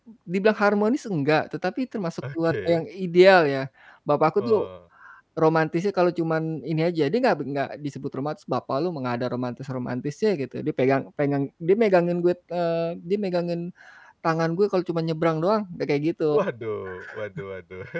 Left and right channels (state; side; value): identical; both; correlation 1.00